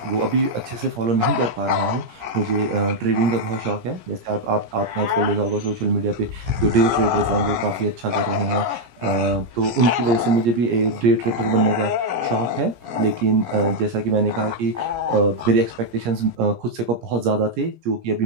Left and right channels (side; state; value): left; late; 17 ms